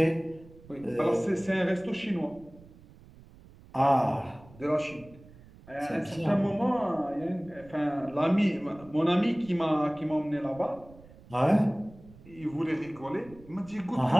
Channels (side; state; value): right; noise; rumble, 22 dB below the sound